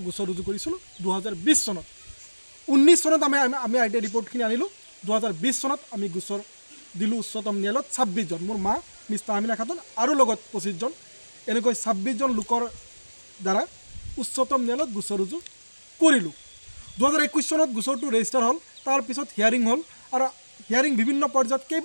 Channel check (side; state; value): both; inverted; correlation -1.00